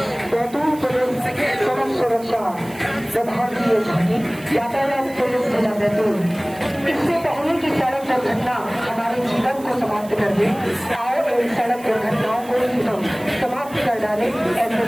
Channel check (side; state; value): right; noise; hiss, 21 dB below the sound